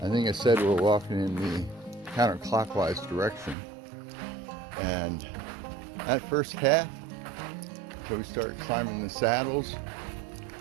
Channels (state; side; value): drops out; left; at 3.6 s